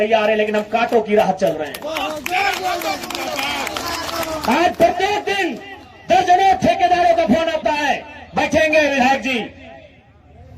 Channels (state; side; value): identical; both; correlation 1.00